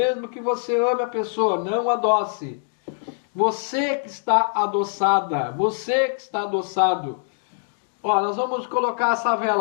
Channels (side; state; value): right; silent; digital silence